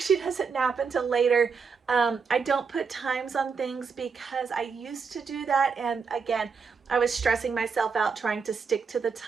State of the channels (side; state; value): left; quieter; 5.5 dB